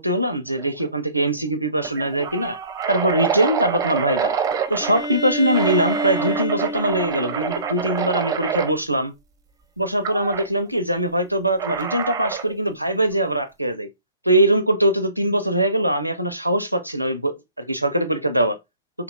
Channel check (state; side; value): inverted; both; correlation -0.53